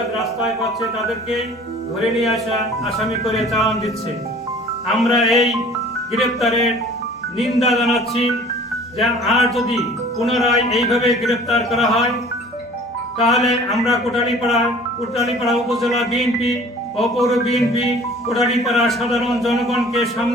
রাস্তায় পাচ্ছে তাদেরকে ধরে নিয়ে আসা আসামি করে চালান দিচ্ছে। আমরা এই গ্রেপ্তারের নিন্দা জানাচ্ছি যে আর যদি পুনরায় এইভাবে গ্রেপ্তার করা হয় তাহলে আমরা কোটালীপাড়া উপজেলা বিএনপি ও পৌর বিএনপি কোটালীপাড়া সাধারণ জনগণকে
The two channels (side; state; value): both; normal; correlation 0.48